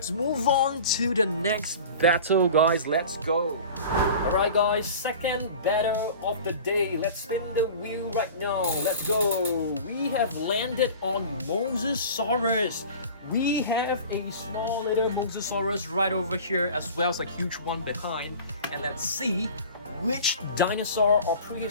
move on to the next battle, guys. Let's go. Alright guys, second battle of the day. Let's spin the wheel right now. Let's go. We have landed on Majungasaurus. We have a small little Majungasaurus right over here, as well as a huge one behind. And let's see which dinosaur or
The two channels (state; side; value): inverted; both; correlation -0.39